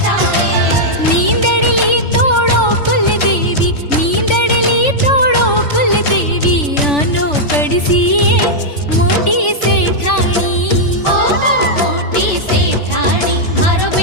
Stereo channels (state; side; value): late; right; 3.5 ms